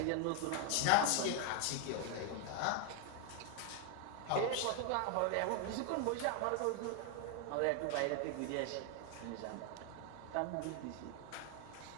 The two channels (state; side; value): different; both; correlation 0.00